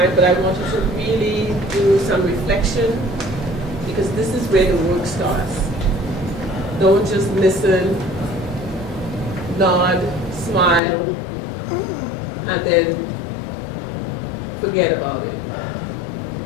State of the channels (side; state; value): right; drops out; at 10.8 s